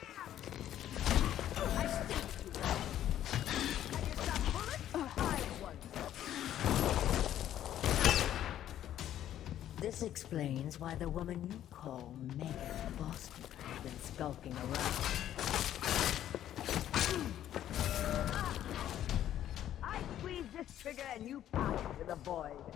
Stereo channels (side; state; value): right; quieter; 11.6 dB